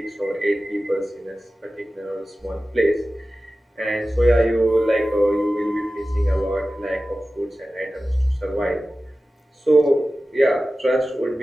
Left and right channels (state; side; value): normal; both; correlation 0.95